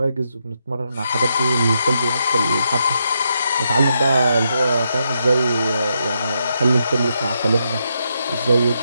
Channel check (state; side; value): inverted; both; correlation -0.81